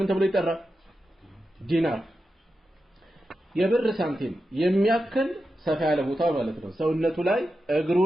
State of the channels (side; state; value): both; normal; correlation 0.90